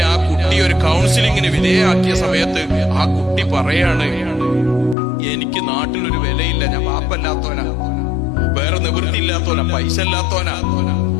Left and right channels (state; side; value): drops out; right; at 5.0 s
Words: ആ കുട്ടി ഒരു കൗൺസിലിങ്ങിന് വിധേയമാക്കിയ സമയത്ത് ആ കുട്ടി പറയാണ്, എനിക്ക് നാട്ടിലൊരു വിലയില്ല, ഞാൻ പാപ്പല്ലാത്തോനാ, വേറെ നിവൃത്തിയില്ലാത്തോനാ, പൈസ ഇല്ലാത്തോനാ.